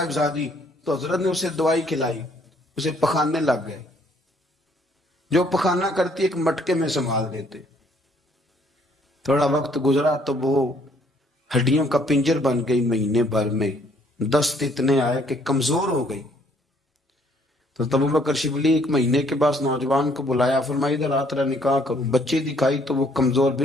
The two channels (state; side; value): normal; both; correlation 0.64